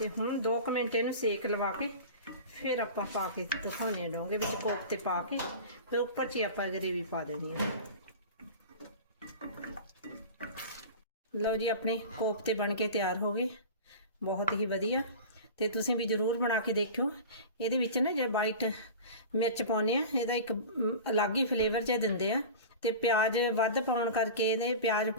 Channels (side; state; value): both; inverted; correlation -0.33